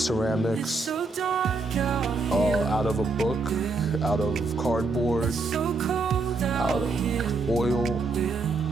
out of a book, out of cardboard, out of oil.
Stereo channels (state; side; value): quieter; left; 3.7 dB